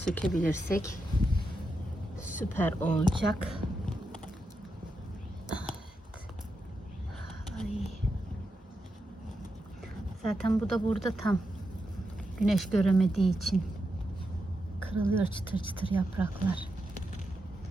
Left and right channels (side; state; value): both; normal; correlation 0.86